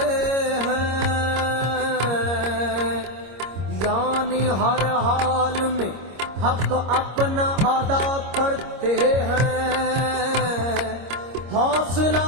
ہیں، یعنی ہر حال میں حق اپنا ادا کرتے ہیں۔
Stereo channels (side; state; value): left; late; 25 ms